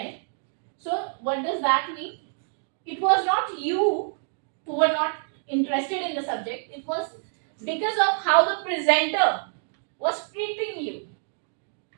So, what does that mean? It was not you who were not interested in the subject, it was because of how the presenter was treating you.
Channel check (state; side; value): silent; left; digital silence